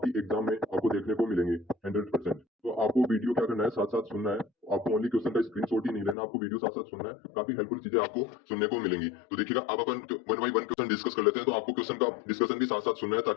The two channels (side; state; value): right; drops out; at 6.2 s